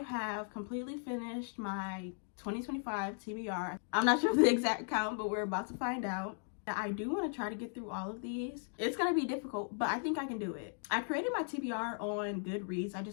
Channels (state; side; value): silent; right; 53 dB below the other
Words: completely finished my 2025 TBR. I'm not sure of the exact count, but we're about to find out. I do want to try to get through all of these. It's going to be difficult, but I think I can do it. I created my TBR on Goodreads. I